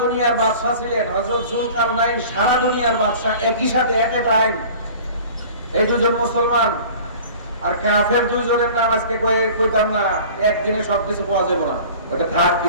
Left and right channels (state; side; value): inverted; both; correlation -0.43